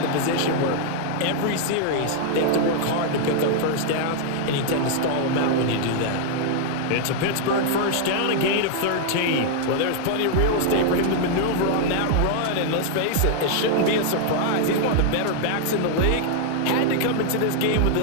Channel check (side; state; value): both; different; correlation 0.00